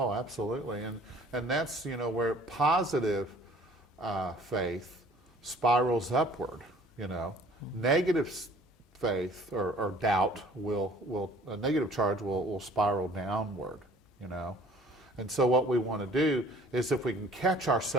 absolutely. And that's, where positive faith spirals upward, Negative faith or doubt will a negative charge will spiral downward, And so what we want to do is, if we can catch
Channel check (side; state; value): both; normal; correlation 0.52